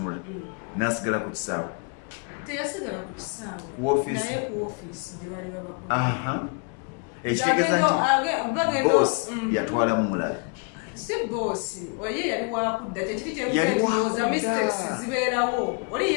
n'asigala ku kisaawe teyasigala ku kisaawe naye ku ofiisi gye bali babakola ekitegeeza nti boss yatwalamu mulala si boosi oye yali wakudda kyekiri kyenkuza mistakes zibeerawo oli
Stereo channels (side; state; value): right; quieter; 35.8 dB